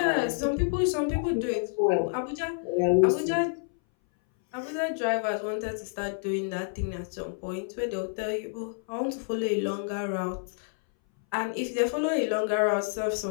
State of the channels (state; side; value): silent; right; 59 dB below the other